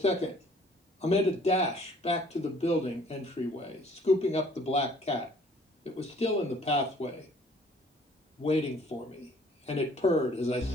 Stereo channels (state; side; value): normal; both; correlation 0.57